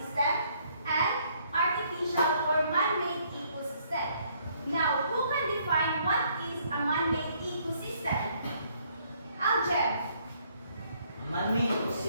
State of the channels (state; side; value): inverted; both; correlation -0.67